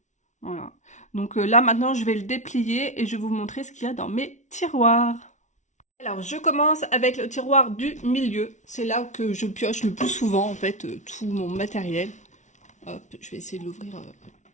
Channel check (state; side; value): late; right; 0.35 ms